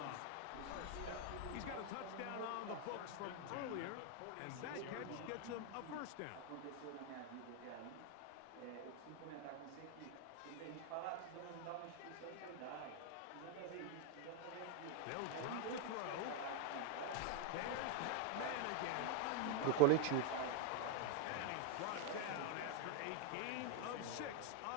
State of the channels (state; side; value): different; both; correlation 0.01